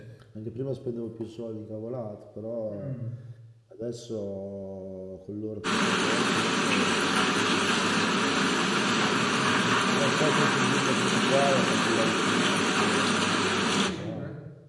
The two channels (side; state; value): both; identical; correlation 1.00